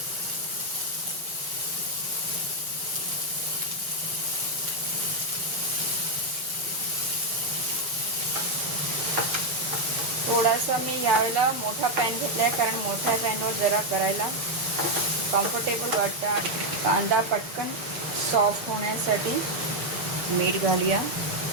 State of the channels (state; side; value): late; left; 7.5 ms